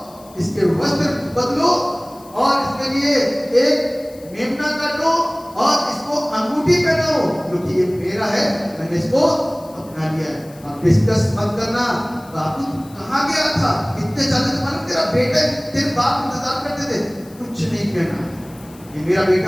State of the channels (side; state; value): left; noise; hiss, 24 dB below the sound